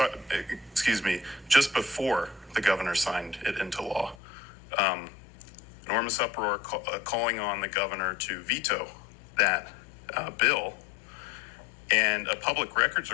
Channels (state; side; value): drops out; right; at 4.2 s